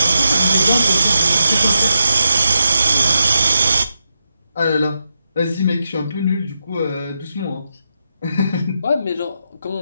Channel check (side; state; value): both; inverted; correlation -0.86